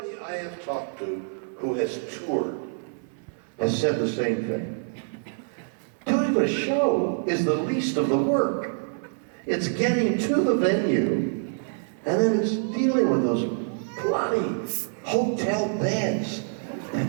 I have talked to who has toured has said the same thing. Doing the show is the least of the work. It's getting to the venue, and then it's dealing with those bloody hotel beds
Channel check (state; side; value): silent; left; 61 dB below the other